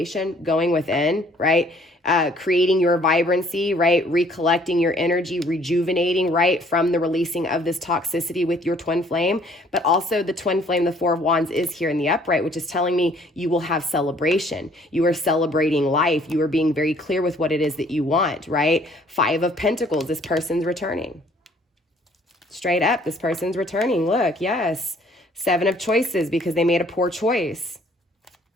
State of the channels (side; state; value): both; normal; correlation 0.59